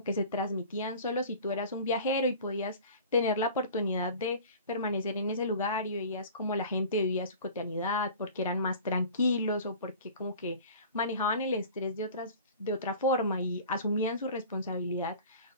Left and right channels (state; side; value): inverted; both; correlation -0.42